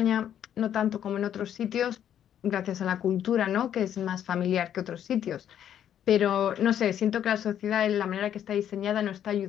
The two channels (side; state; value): right; quieter; 10.0 dB